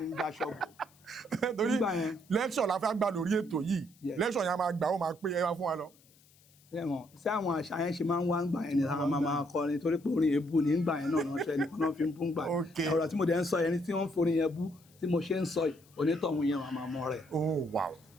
da ṣọ́ọ̀bù. torí lẹ́kṣọ̀ la fẹ́ gbà lórí ètò yìí lẹ́kṣọ̀ yẹn a máa gbà ó máa pé ẹ wá fún wa lọ. sí àwọn àṣà yẹn ṣe máa ń wá ń gbà yẹn ni àwọn máa kọrin torí pé orin èébú ní gbà yẹn náà ránṣẹ́ nìkan náà fi ń bú ń gbà yẹn ọ̀rọ̀ tí mo dẹ̀ ń sọ yẹn ni tí wọ́n ń forin yẹn bú tí mo ṣe ń sọ onítọ̀hún yẹn máa mọ rẹ̀. oh wow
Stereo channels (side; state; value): left; noise; hiss, 29 dB below the sound